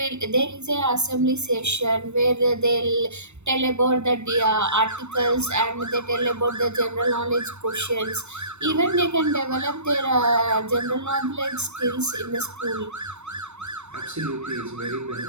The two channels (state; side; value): late; left; 0.82 ms